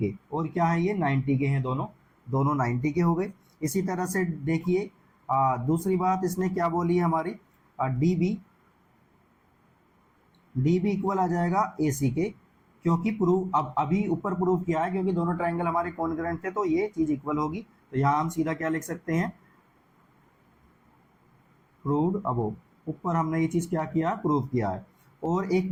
और क्या है ये 90 के हैं, दोनों 90 के हो गए। इसी तरह से देखिए दूसरी बात इसने क्या बोली है हमारी, डी बी इक्वल आ जाएगा ए सी के, क्योंकि प्रूव अब अभी ऊपर प्रूव किया है, क्योंकि दोनों ट्राइंगल हमारे कॉन्ग्रुएंट थे, तो ये चीज इक्वल होगी। तो यहाँ हम सीधा क्या लिख सकते हैं, प्रूव्ड अबोव, ऊपर हमने ये चीज क्या किया, प्रूव किया है। और एक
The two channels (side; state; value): both; identical; correlation 1.00